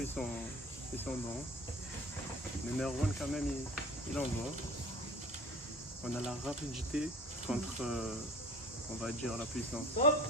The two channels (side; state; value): both; normal; correlation 0.42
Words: ils sont bons. Mais Merwan, quand même, il envoie. On a la rapidité contre, on va dire, la puissance. Stop.